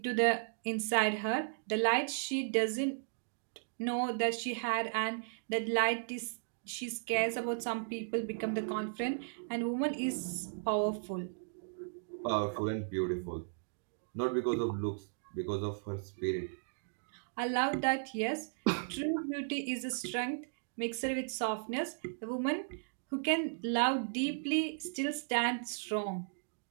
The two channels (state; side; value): silent; left; digital silence